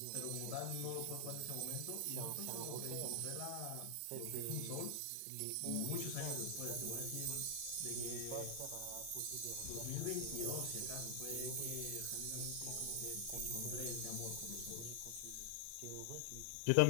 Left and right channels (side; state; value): both; different; correlation -0.01